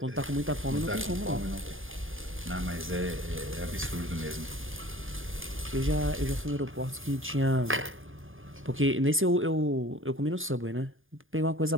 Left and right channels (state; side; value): late; left; 0.59 ms